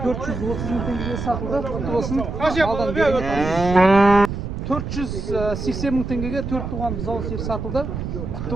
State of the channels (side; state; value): right; noise; rumble, 5 dB below the sound